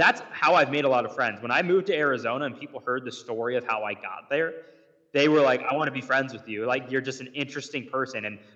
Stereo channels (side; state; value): both; identical; correlation 1.00